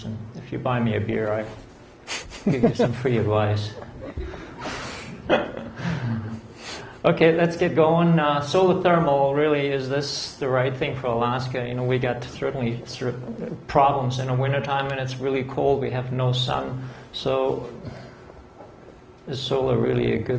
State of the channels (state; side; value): identical; both; correlation 1.00